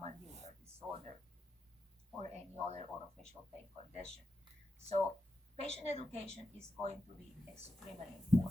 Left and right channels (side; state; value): both; normal; correlation 0.88